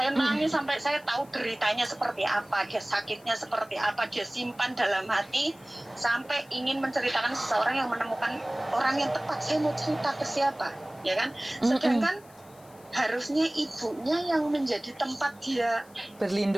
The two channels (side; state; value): left; noise; hiss, 26 dB below the sound